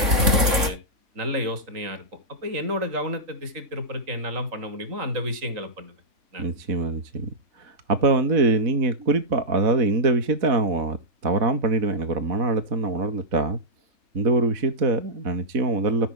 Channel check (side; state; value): left; late; 3.6 ms